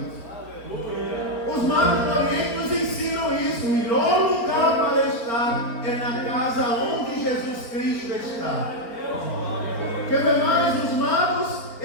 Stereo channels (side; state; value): right; late; 4.4 ms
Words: Os magos do Oriente nos ensinam isso. O melhor lugar para estar é na casa onde Jesus Cristo está. Quer ver mais? Os magos,